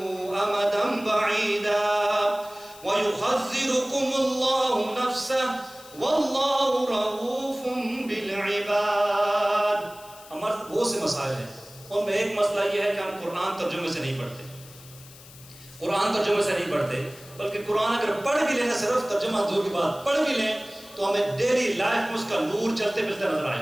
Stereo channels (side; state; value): left; noise; hiss, 20 dB below the sound